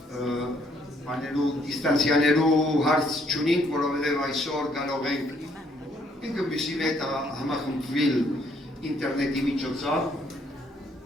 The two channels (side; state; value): both; normal; correlation 0.67